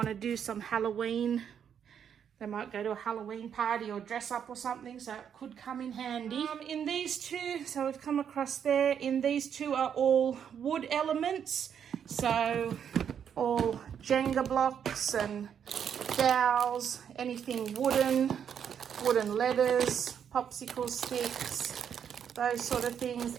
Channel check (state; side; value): quieter; left; 8.2 dB